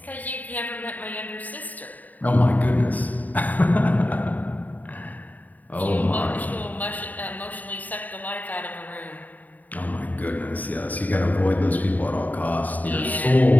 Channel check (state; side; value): late; right; 0.079 ms